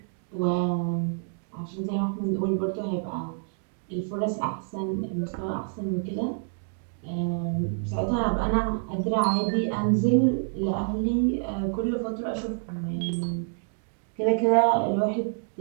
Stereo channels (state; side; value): silent; left; digital silence